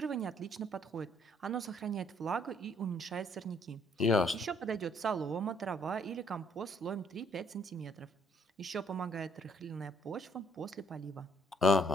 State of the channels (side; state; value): both; normal; correlation 0.66